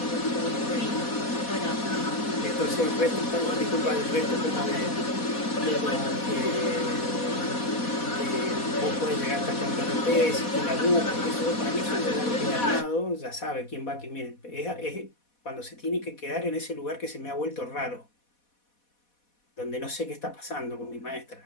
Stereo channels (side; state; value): right; late; 4.1 ms